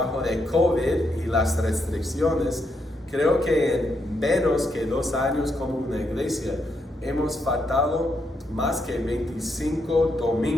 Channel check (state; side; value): normal; both; correlation 0.79